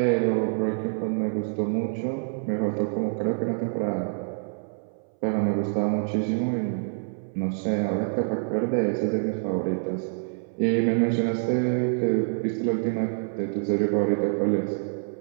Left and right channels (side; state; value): left; silent; 61 dB below the other